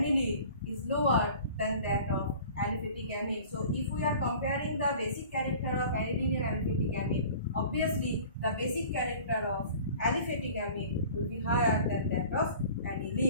is lower than that of aliphatic amine. So if we are comparing the basic character of aniline and aliphatic amine, obviously the basic character of aliphatic amine will be higher than that of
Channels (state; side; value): inverted; both; correlation -0.44